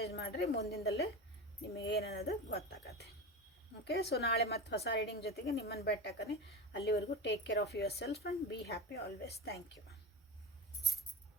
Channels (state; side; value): normal; both; correlation 0.24